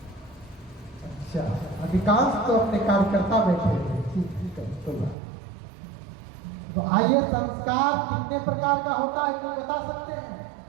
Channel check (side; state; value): left; drops out; at 5.2 s